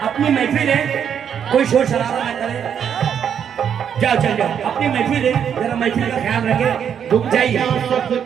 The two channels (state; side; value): quieter; left; 8.3 dB